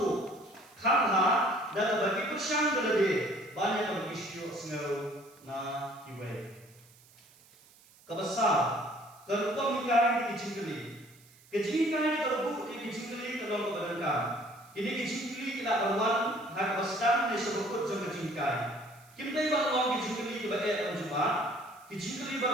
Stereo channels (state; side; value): noise; right; hiss, 26 dB below the sound